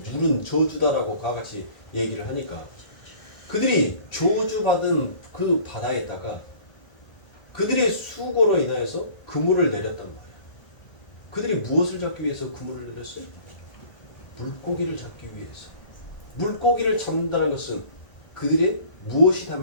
물은 저주다라고 그와 같이 얘기를 하니까 그들이 저주받은 그 바다에다가 그들의 수고로 인하여서 그물을 내렸단 말이에요. 그들이 무엇을 잡기 위해서 그물을 내렸어요? 물고기를 잡기 위해서. 물고기를 잡는다는 것은 그들의 무엇이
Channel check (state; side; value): late; right; 1.5 ms